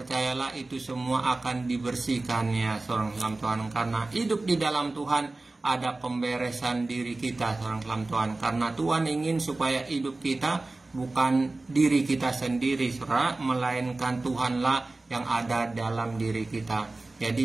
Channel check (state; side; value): quieter; left; 3.1 dB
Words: itu semua akan dibersihkan ya seorang Tuhan. Karena hidup di dalam Tuhan ada pemberesan diri kita seorang Tuhan. Karena Tuhan ingin supaya hidup kita bukan diri kita sendiri, saudara, melainkan Tuhanlah yang ada dalam diri kita.